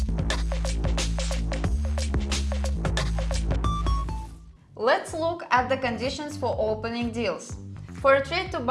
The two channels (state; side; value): identical; both; correlation 1.00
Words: Let's look at the conditions for opening deals. For a trade to